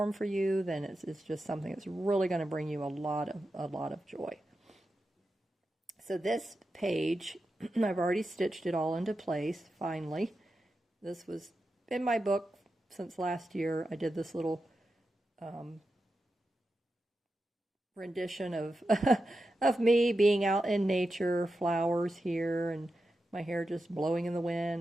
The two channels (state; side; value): normal; both; correlation 0.90